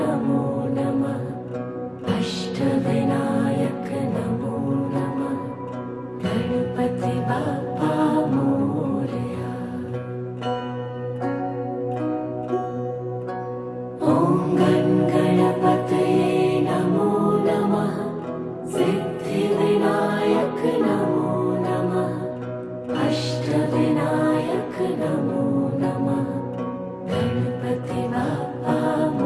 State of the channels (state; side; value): identical; both; correlation 1.00